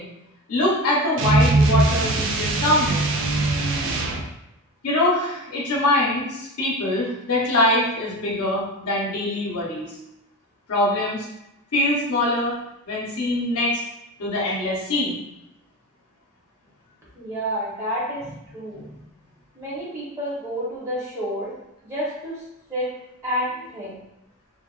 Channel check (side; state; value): both; normal; correlation 0.27